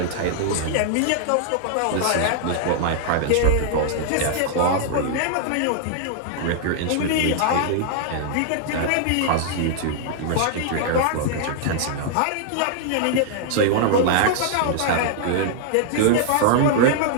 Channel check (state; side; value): different; both; correlation -0.01